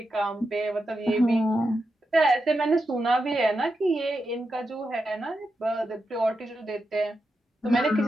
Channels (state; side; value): normal; both; correlation 0.87